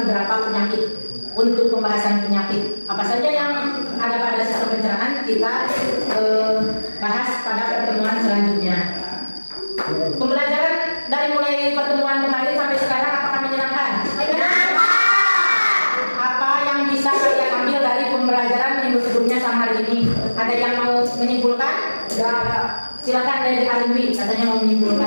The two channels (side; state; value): both; inverted; correlation -1.00